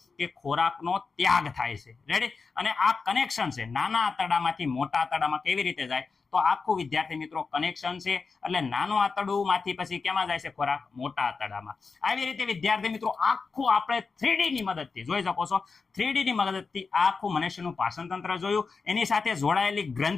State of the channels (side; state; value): right; quieter; 4.7 dB